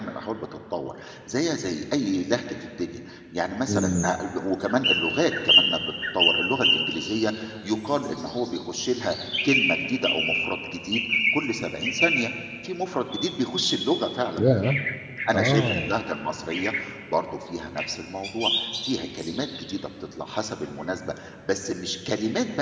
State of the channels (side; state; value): both; identical; correlation 1.00